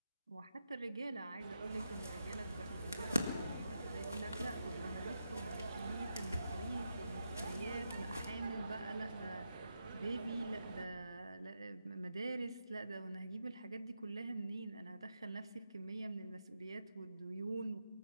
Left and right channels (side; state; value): both; inverted; correlation -0.85